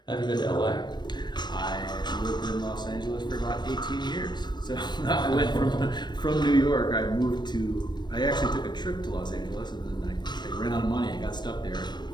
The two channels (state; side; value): late; right; 0.21 ms